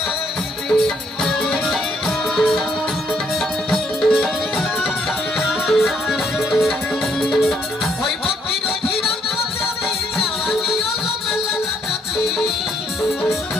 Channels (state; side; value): normal; both; correlation 0.71